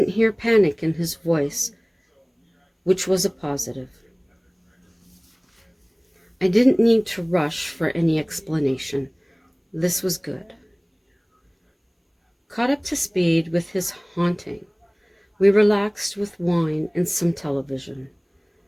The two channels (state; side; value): identical; both; correlation 1.00